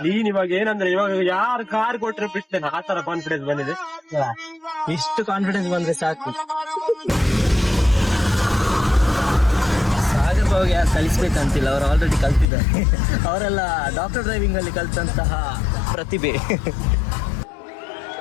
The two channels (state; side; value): drops out; right; at 12.5 s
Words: ನೀನ್ ಇವಾಗ ಏನಂದ್ರೆ ಇವಾಗ ಯಾರು ಕಾರ್ ಕೊಟ್ರೆ ಬಿಡ್ತೇನೆ, ಆ ತರ ಕಾನ್ಫಿಡೆನ್ಸ್ ಬಂದಿದೆ. ಇಷ್ಟು ಕಾನ್ಫಿಡೆನ್ಸ್ ಬಂದ್ರೆ ಸಾಕು. ಸಾಗರ್ ಬಾವಿಗೆ ಯಾರು ಕಲಿಸ್ಬೇಕಂತಿಲ್ಲ, ಅವರು ಆಲ್ರೆಡಿ ಕಲ್ತಿದ್ದಾರೆ. ಅವರೆಲ್ಲ ಡಾಕ್ಟರ್ ಡ್ರೈವಿಂಗ್ ಅಲ್ಲಿ ಕಲ್ತಂತಹ ಪ್ರತಿಭೆ.